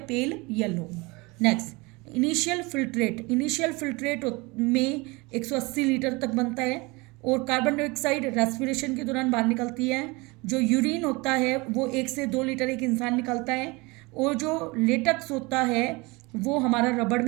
yellow. Next, initial filtrate में 180 लीटर तक बनता है और कार्बन डाइऑक्साइड रेस्पिरेशन के दौरान बाहर निकलती है। जो यूरिन होता है वो 1 से 2 लीटर एक इंसान निकलता है। और जो लेटेक्स होता है वो हमारा रबड़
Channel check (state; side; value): quieter; left; 25.3 dB